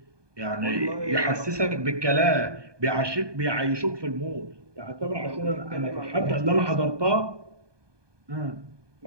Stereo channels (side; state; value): left; late; 1.2 ms